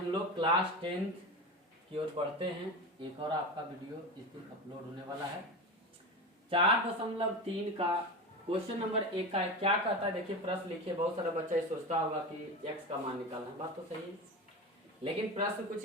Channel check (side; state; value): both; normal; correlation 0.24